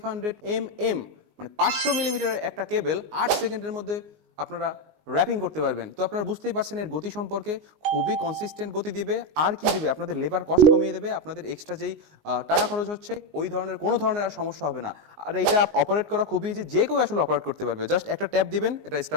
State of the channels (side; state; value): left; late; 19 ms